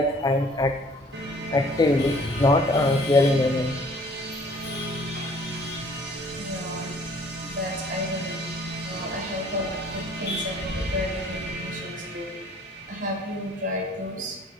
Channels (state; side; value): normal; both; correlation 0.55